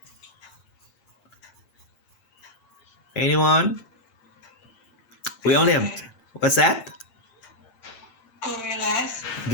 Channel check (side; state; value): right; late; 8.9 ms